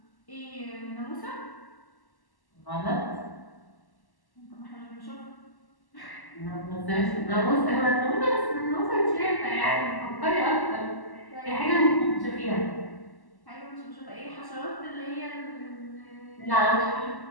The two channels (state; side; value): late; right; 1.1 ms